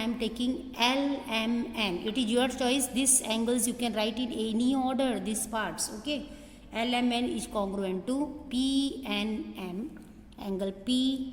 am taking LMN. It is your choice. These angles you can write in any order, these parts. Okay. LMN is congruent to PNM. Angle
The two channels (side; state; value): both; identical; correlation 1.00